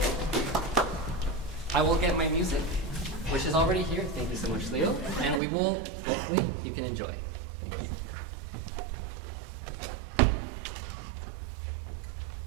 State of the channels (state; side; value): drops out; left; at 5.4 s